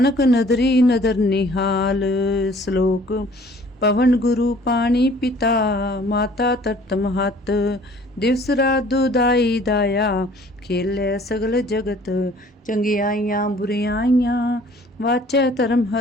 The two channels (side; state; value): both; normal; correlation 0.54